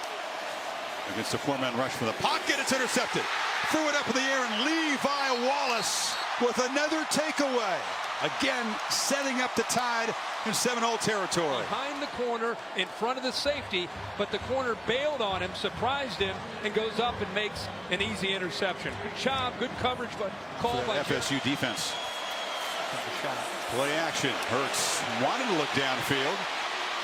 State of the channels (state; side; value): identical; both; correlation 1.00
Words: Against a 4-man rush from the pocket. It's intercepted. Threw it up in the air, and Levi Wallace with another takeaway. Again, setting up the Tide in Seminole territory. Behind the corner, in front of the safety, but the corner bailed on him, surprised him, and goes up and makes an easy interception. Good job, good coverage, but called by FSU defense. Play action. Hurts wanted to look downfield.